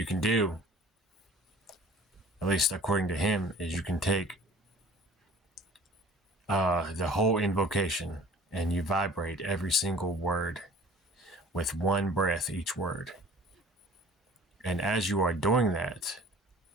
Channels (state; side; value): normal; both; correlation 0.47